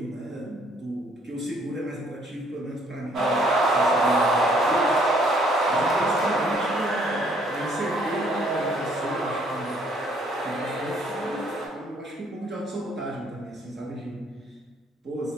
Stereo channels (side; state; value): both; normal; correlation 0.63